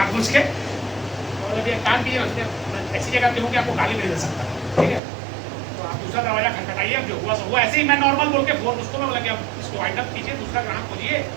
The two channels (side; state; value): left; drops out; at 5.0 s